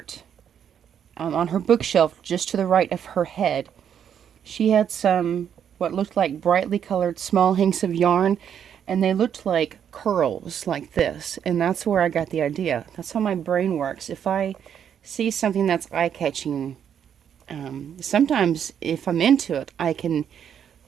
on her bookshelf just to the right of her head, she had some what looked like brightly colored small hanks of yarn, and they looked like curls like this, and that's where I got the idea. That's how my brain works. If I see something that's eye-catching, sometimes if I'm into it, I can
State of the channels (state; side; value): quieter; left; 8.6 dB